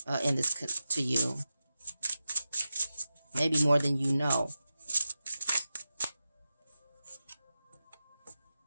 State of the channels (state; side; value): inverted; both; correlation -0.93